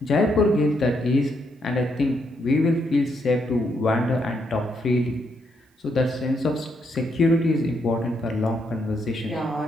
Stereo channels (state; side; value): normal; both; correlation 0.77